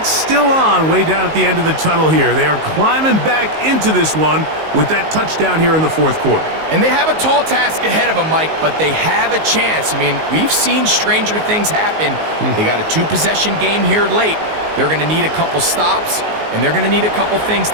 still on way down at the end of the tunnel here. They are climbing back into this one with that touchdown here in the fourth quarter. And they have a tall task ahead of them, Mike, but they have a chance. I mean, we've seen stranger things happen. They got a 2-possession game here late. They're going to need a couple stops, and they're going to need a couple things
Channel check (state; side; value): late; left; 19 ms